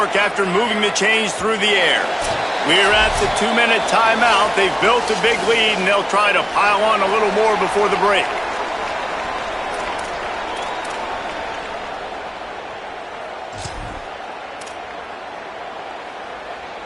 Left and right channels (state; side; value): identical; both; correlation 1.00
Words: after moving the chains through the air. We're at the 2-minute timeout. They've built a big lead, and they'll try to pile on a little more before the break.